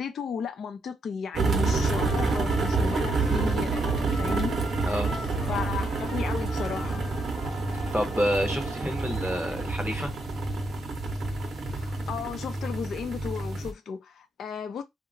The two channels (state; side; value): normal; both; correlation 0.78